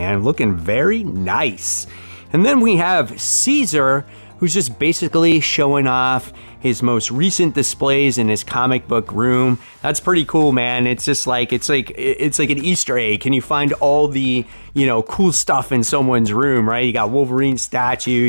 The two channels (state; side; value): inverted; both; correlation -1.00